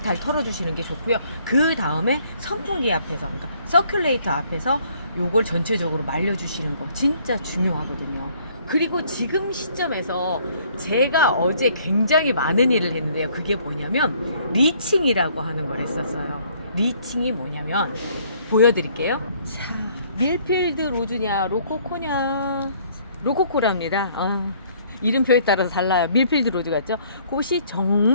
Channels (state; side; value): inverted; both; correlation -0.62